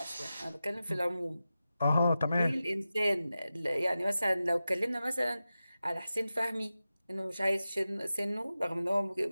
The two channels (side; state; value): both; inverted; correlation -0.93